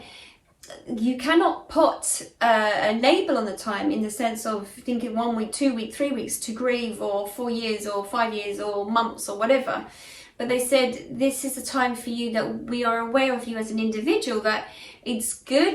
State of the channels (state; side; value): identical; both; correlation 1.00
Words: you cannot put a label on the time, in the sense of thinking 1 week, 2 weeks, 3 weeks to grieve, or 4 years, or 5 years, or months, or whatever. But they said this is a time for you that we are aware of you as an individual, that it's